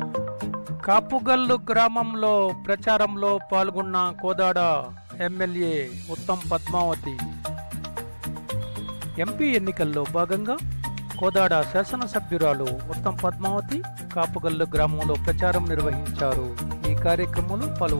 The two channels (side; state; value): both; inverted; correlation -1.00